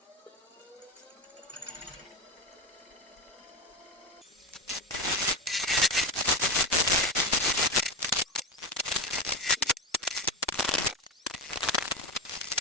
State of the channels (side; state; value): both; normal; correlation 0.18